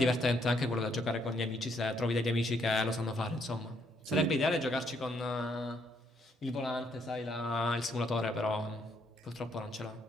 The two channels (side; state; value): both; normal; correlation 0.72